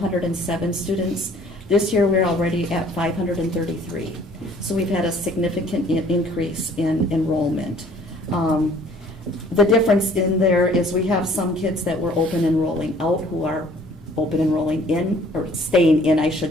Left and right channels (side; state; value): both; normal; correlation 0.55